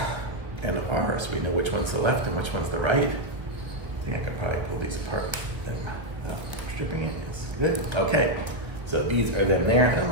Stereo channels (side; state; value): left; late; 1.1 ms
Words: and R, so we know which one's the left and which one's the right. I think I could probably pull these apart without stripping it. It's good. Okay, so these are them there. I don't